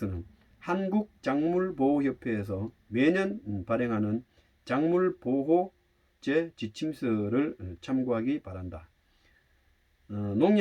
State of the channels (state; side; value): identical; both; correlation 1.00